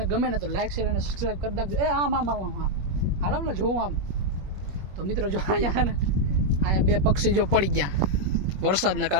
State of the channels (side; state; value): left; late; 21 ms